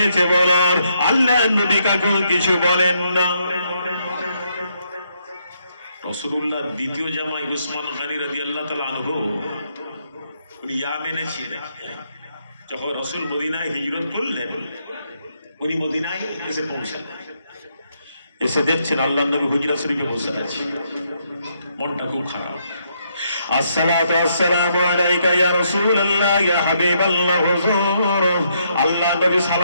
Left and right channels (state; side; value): inverted; both; correlation -0.75